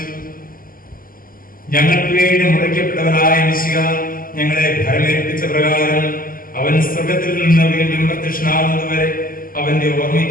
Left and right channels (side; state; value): right; late; 0.41 ms